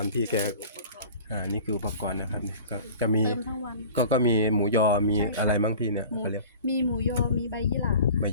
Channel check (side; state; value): both; inverted; correlation -0.42